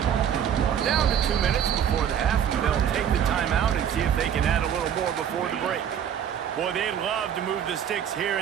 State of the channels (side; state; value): left; quieter; 9.0 dB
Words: Down to 2 minutes before the half, and they'll take the timeout and see if they can add a little more before the break. Boy, they'd love to move the sticks here